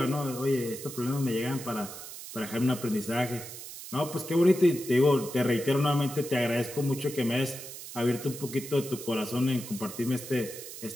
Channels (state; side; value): noise; right; hiss, 11 dB below the sound